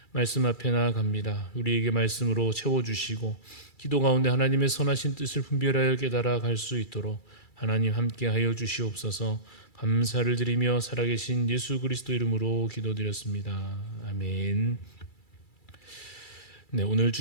말씀 앞에 나아갑니다. 우리에게 말씀으로 채워주시고 기도 가운데 하나님의 선하신 뜻을 분별하여 깨달아 갈 수 있도록 하나님 함께 하여 주시옵소서. 감사를 드리며 살아계신 예수 그리스도 이름으로 기도드렸습니다. 아멘. 네, 오늘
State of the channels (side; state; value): right; late; 2.3 ms